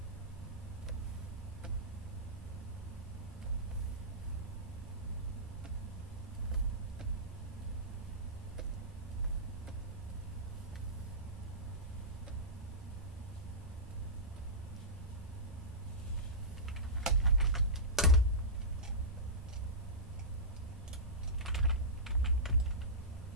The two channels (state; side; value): normal; both; correlation -0.17